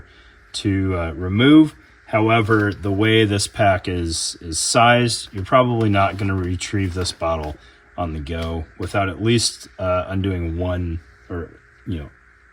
to remove. However, the way this pack is sized, you're probably not going to retrieve this bottle on the go without at least undoing one, or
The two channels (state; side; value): identical; both; correlation 1.00